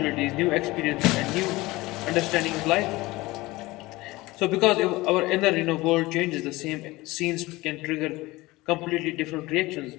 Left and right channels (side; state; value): right; quieter; 20.4 dB